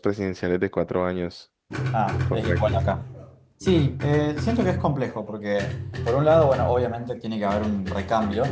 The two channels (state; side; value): identical; both; correlation 1.00